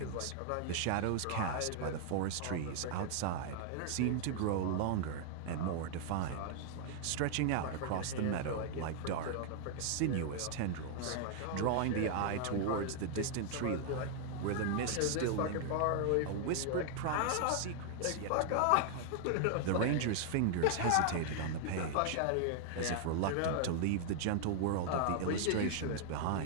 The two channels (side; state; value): both; different; correlation 0.00